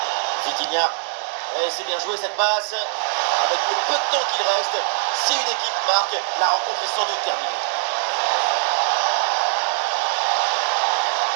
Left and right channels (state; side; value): silent; left; 64 dB below the other